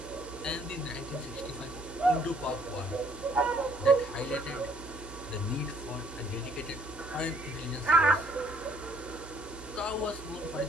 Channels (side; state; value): right; noise; hum, 15 dB below the sound